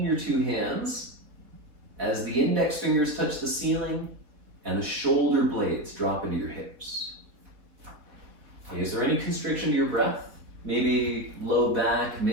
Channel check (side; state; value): left; late; 4.1 ms